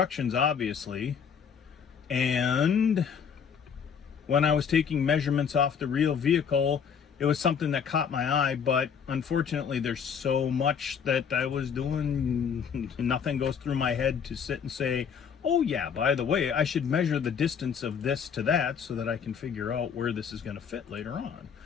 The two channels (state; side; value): quieter; right; 7.0 dB